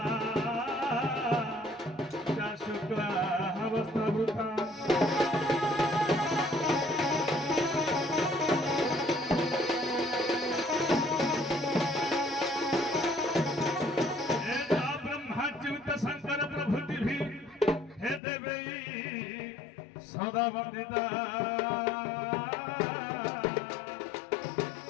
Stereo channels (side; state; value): right; drops out; at 18.2 s